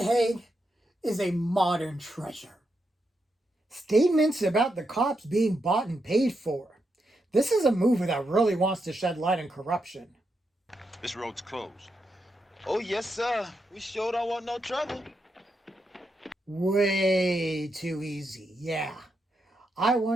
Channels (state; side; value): normal; both; correlation 0.84